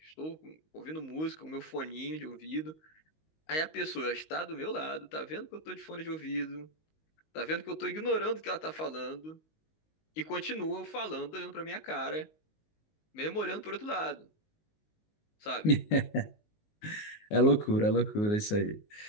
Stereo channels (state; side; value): late; right; 19 ms